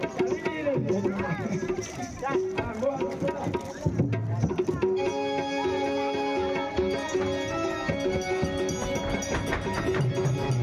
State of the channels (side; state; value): both; identical; correlation 1.00